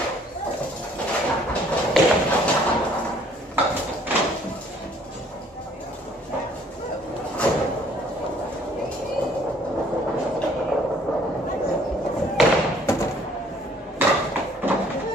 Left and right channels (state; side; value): normal; both; correlation 0.60